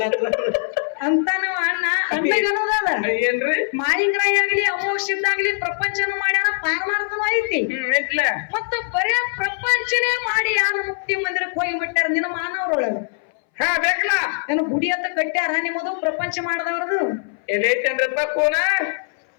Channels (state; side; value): silent; right; 61 dB below the other